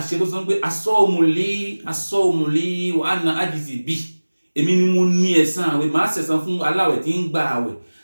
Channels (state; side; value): inverted; both; correlation -1.00